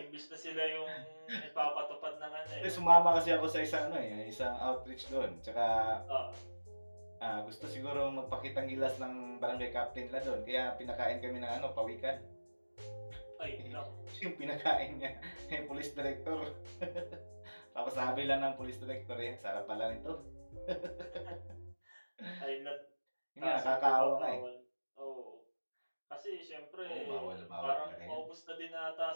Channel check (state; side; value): inverted; both; correlation -1.00